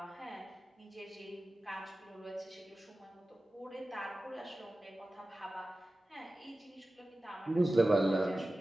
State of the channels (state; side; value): normal; both; correlation 0.95